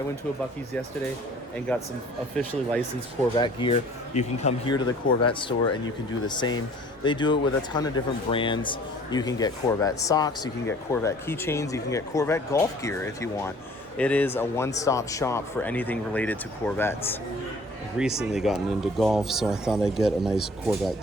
went to a Buc-ee's yesterday and got some officially licensed Corvette gear. You can come here to the Corvette store and you can do the same. They do it with a ton of different brands. You can get Corvette socks, you can get Corvette keychains, you can get Corvette golf gear if you want. It is a one-stop shop for anything related to Corvettes. I've recently gotten into golf, so I thought I'd get a nice Corvette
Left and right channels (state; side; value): normal; both; correlation 0.52